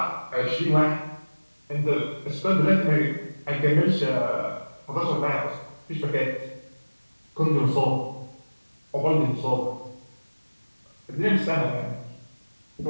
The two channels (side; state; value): both; inverted; correlation -1.00